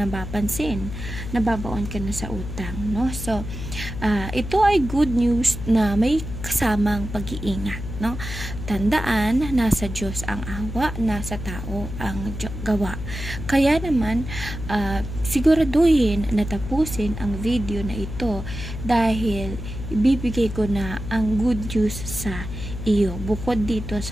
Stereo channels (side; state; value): left; noise; hum, 8 dB below the sound